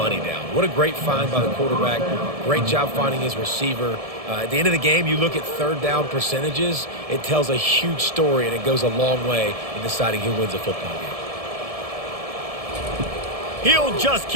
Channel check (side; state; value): left; late; 1.7 ms